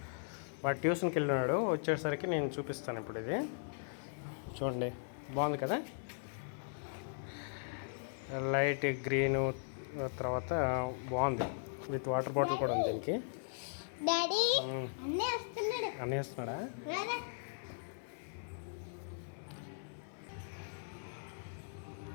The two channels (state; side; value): silent; right; digital silence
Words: వాడు ట్యూషన్కి వెళ్ళినాడు, వచ్చేసరికి నేను చూపిస్తాను ఇప్పుడు. ఇది చూడండి, బాగుంది కదా. లైట్ గ్రీను, తర్వాత బాగుంది. విత్ వాటర్ బాటిల్ కూడా ఉంది దీనికి. అన్నీ వస్తున్నాడా?